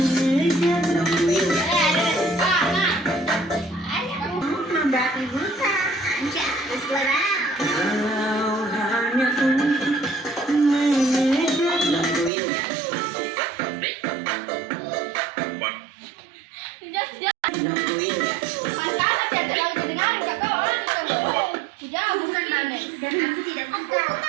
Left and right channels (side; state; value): left; drops out; at 12.3 s